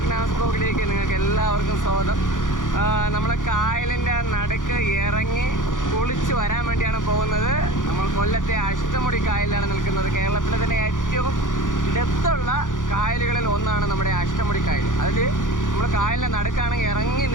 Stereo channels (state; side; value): late; right; 0.88 ms